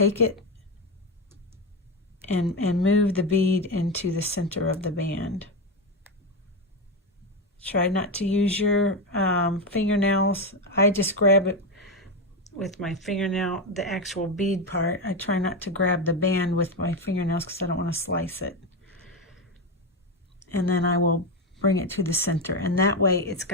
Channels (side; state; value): both; normal; correlation 0.12